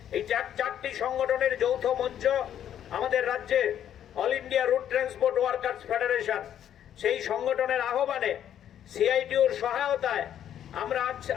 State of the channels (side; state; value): right; quieter; 10.2 dB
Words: এই চারটি সংগঠনের যৌথ মঞ্চ আমাদের রাজ্যে all India route transport workers federation, সেই সংগঠনের আহ্বানে সিআইটিউর সহায়তায় আমরা